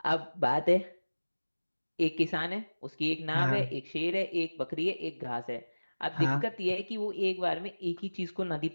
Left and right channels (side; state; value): both; inverted; correlation -1.00